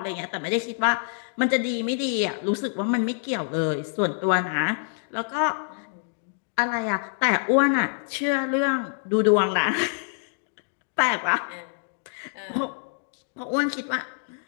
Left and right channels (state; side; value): silent; right; 61 dB below the other